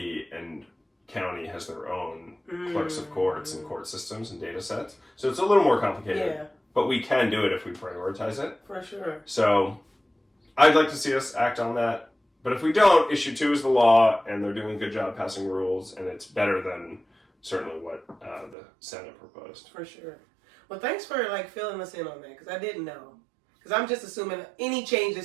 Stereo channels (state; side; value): drops out; left; at 18.6 s